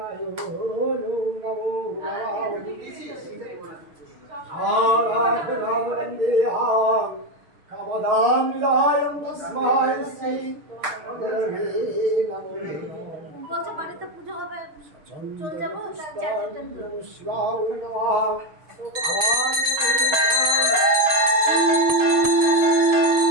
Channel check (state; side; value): late; left; 6.6 ms